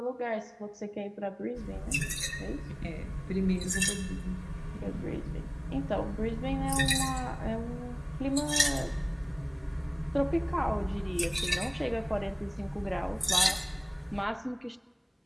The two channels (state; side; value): identical; both; correlation 1.00